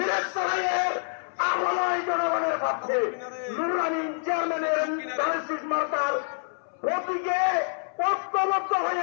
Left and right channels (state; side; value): silent; right; 60 dB below the other